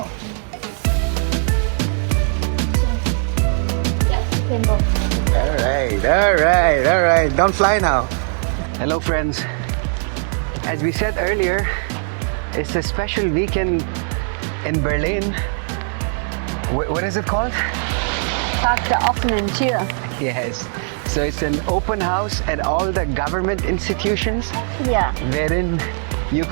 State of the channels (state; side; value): silent; left; 57 dB below the other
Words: All right. Don't fly now. Hello, friends. As we said earlier, it's a special weekend in Berlin. What is it called? Tag der offenen Tür. Yes. So it's an open house at all the government institutions, Yeah. wherein you